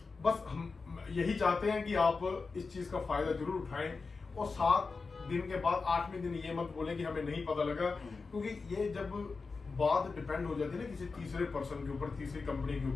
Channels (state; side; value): quieter; right; 4.4 dB